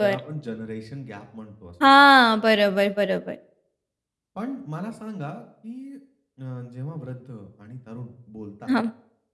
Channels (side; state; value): both; identical; correlation 1.00